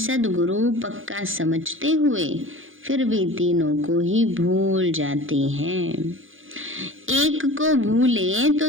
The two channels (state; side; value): late; left; 0.58 ms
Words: पक्का समझते हुए, फिर भी तीनों को ही भूल जाते हैं। एक को भूले